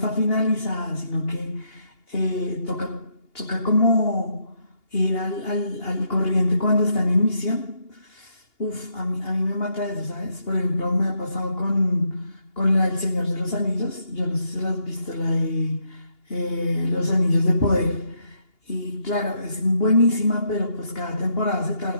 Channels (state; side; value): late; right; 2.8 ms